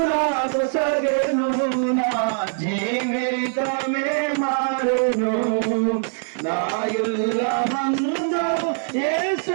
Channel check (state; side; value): silent; left; 64 dB below the other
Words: నాకు సగెను, నా జీవితమే మారెను. నాయుల మందు